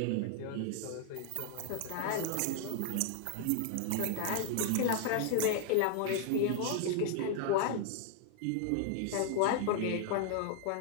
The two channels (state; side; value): different; both; correlation 0.00